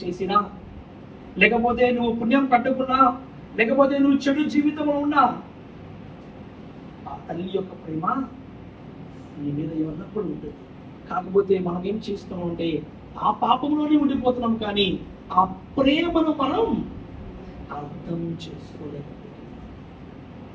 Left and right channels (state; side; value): identical; both; correlation 1.00